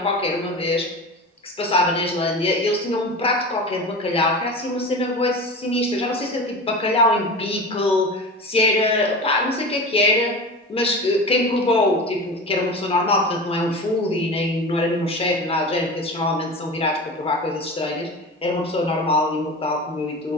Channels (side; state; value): both; normal; correlation 0.30